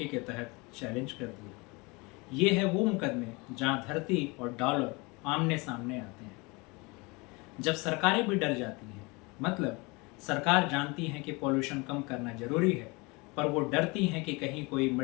के तहत चैलेंज कर दिया। ये है वो मुकदमे जहां धरती और डॉलर आमने सामने आते हैं। जब सरकारें भी डर जाती हैं, मतलब सरकार जानती है कि पॉल्यूशन कम करना जरूरी है, पर वो डरती हैं कि कहीं कोई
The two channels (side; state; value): right; quieter; 26.6 dB